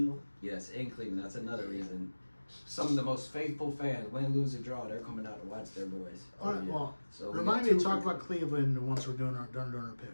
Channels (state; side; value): inverted; both; correlation -1.00